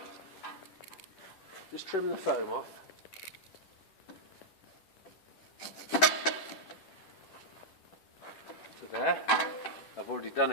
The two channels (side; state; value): right; late; 11 ms